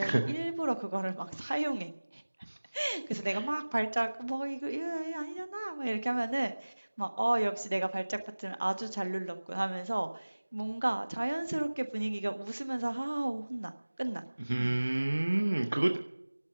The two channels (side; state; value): both; inverted; correlation -1.00